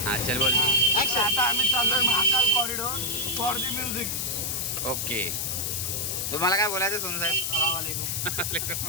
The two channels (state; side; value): noise; left; hiss, 1 dB below the sound